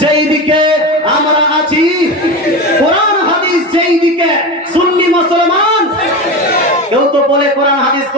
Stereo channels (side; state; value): both; normal; correlation 0.23